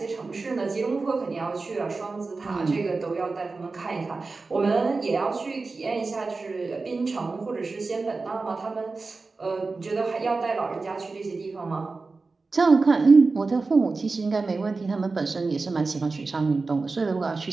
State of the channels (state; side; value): quieter; left; 3.9 dB